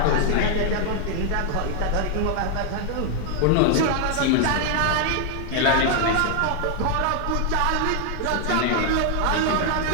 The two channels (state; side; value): different; both; correlation 0.00